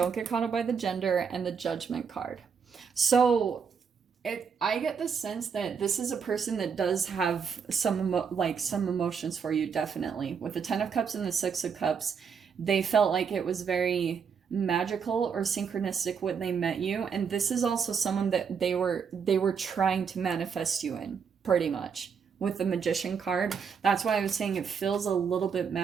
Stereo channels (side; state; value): left; quieter; 6.4 dB